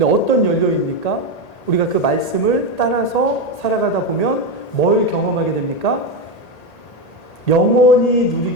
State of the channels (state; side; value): late; right; 1.8 ms